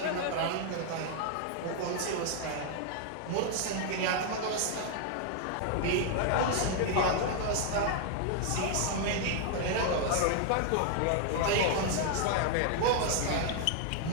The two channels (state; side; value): different; both; correlation 0.00